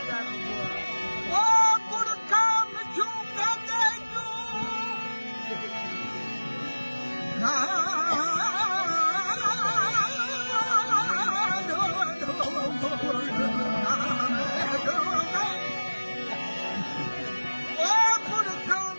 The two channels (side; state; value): both; inverted; correlation -1.00